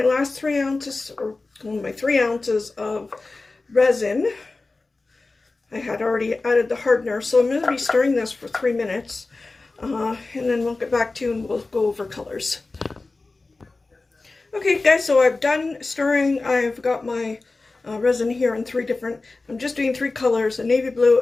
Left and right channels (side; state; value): right; quieter; 3.5 dB